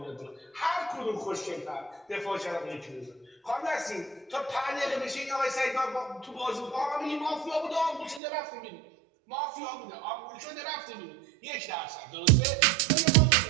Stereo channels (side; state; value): left; drops out; at 8.2 s